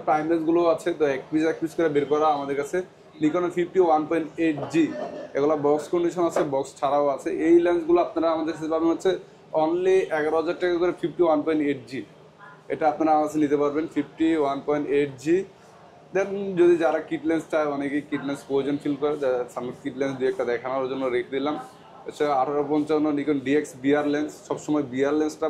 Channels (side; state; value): both; identical; correlation 1.00